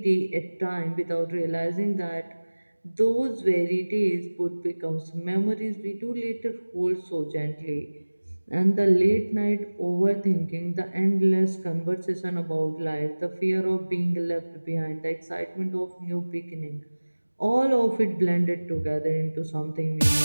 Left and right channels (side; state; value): both; inverted; correlation -1.00